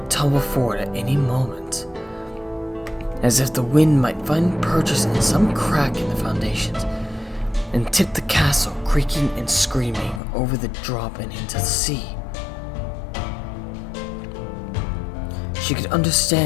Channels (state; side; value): drops out; right; at 10.2 s